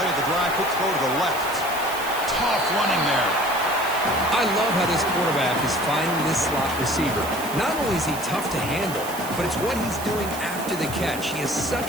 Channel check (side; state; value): right; noise; hiss, 11 dB below the sound